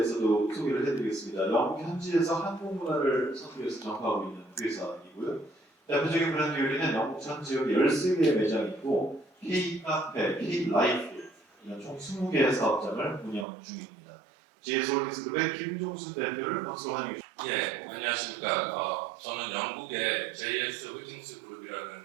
소개를 해드리겠습니다. 영국 현지에서 한국 문화를 선도해서 전파하고 있는 회사이고요. 대표적인 브랜드 요리는 영국 전 지역 13개의 매장이 있고 K-카페, K-라이프 이런 총 20개의 사업장을 운영 중입니다. JS 홀딩스 그룹의 김종순 대표를 박수로 환영해 주십니다. 예, 안녕하십니까. 저는 영국의 JS 홀딩스 그룹이라는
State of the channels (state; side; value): drops out; left; at 13.5 s